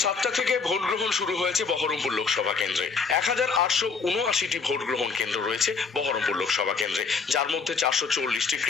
7টা থেকে ভোট গ্রহণ শুরু হয়েছে বহরমপুর লোকসভা কেন্দ্রে। 1879টি ভোট গ্রহণ কেন্দ্র রয়েছে বহরমপুর লোকসভা কেন্দ্রে, যার মধ্যে 440টি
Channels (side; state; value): right; quieter; 5.1 dB